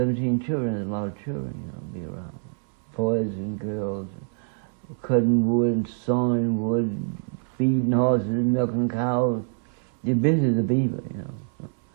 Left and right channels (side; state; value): left; silent; 61 dB below the other